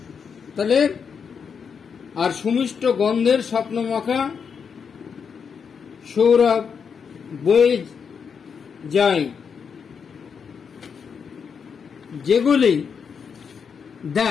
তাহলে আর সুমিষ্ট গন্ধের স্বপ্নমাখা সৌরভ বয়ে যায়, যেগুলি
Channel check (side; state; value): right; quieter; 6.4 dB